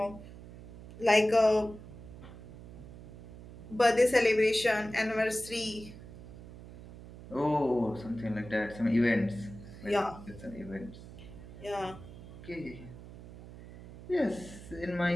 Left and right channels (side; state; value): right; noise; hum, 15 dB below the sound